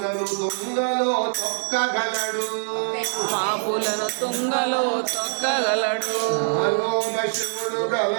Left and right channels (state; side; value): silent; left; digital silence